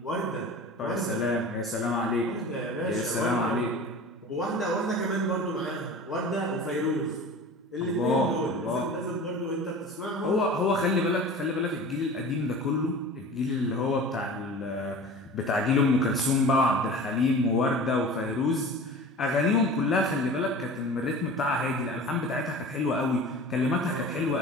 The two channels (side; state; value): both; normal; correlation 0.38